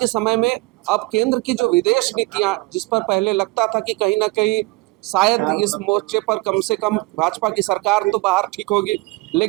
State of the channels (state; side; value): quieter; left; 22.8 dB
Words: समय में अब केंद्र की जो विदेश नीतियां, जिस पर पहले लगता था कि कहीं ना कहीं शायद इस मोर्चे पर कम से कम भाजपा की सरकार तो बाहर ठीक होगी,